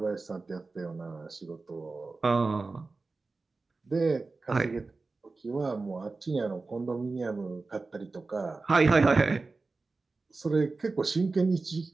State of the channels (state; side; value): quieter; left; 3.8 dB